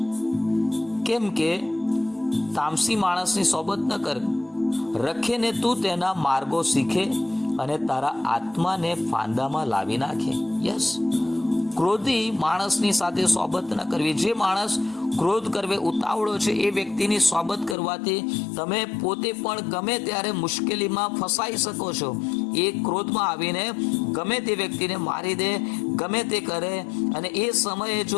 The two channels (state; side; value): drops out; right; at 17.8 s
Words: કેમ કે તામસી માણસની સોબત ન કર, રખે ને તું તેના માર્ગો શીખે અને તારા આત્માને ફાંદામાં લાવી નાખે. યસ, ક્રોધી માણસની સાથે સોબત ન કરવી. જે માણસ ક્રોધ કરવે ઉતાવળો છે એ વ્યક્તિની સોબત કરવાથી તમે પોતે પણ ગમે ત્યારે મુશ્કેલીમાં ફસાઈ શકો છો. એ ક્રોધમાં આવીને ગમે તે વ્યક્તિને મારી દે, ગમે તે કરે, અને એ સમયે